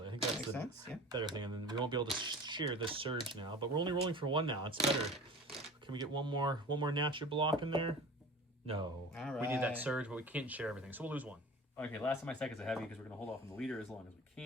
I think that's Makes the sense, yeah. better thing. And then we won't be able to share this surge now, but we're only rolling for 1 now. It's better. Can we get one more natural block in there? No. All We need that right. surge, but we can't share everything, so we'll lose 1. Okay, last of my second's a heavy because we're going to hold off on the leader as long as we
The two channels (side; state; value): both; normal; correlation 0.39